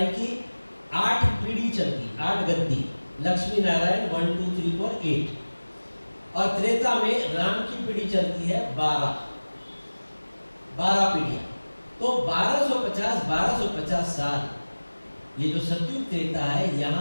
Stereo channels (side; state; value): both; inverted; correlation -1.00